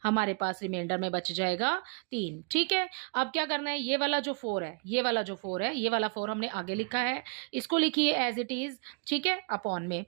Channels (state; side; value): quieter; left; 36.0 dB